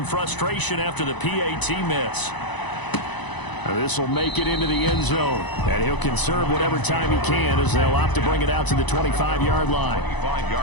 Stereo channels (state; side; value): late; right; 1.0 ms